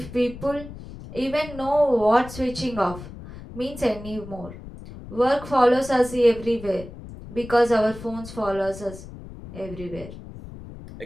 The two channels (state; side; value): noise; left; rumble, 14 dB below the sound